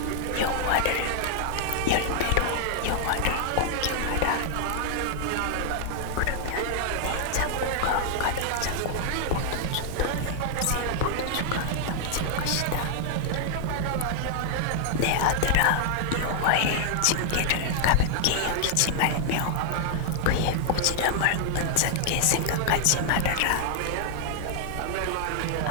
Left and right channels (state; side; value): different; both; correlation 0.00